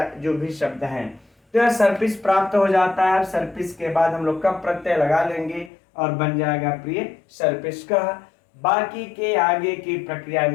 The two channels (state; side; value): drops out; right; at 5.7 s